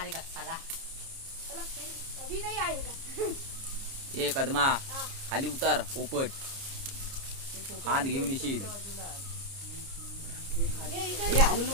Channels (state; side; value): late; left; 30 ms